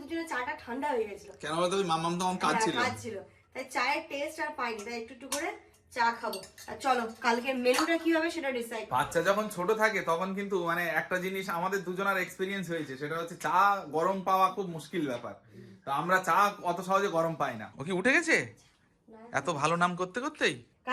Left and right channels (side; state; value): both; identical; correlation 1.00